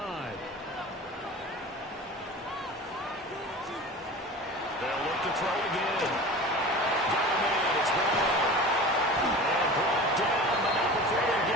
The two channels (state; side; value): normal; both; correlation 0.35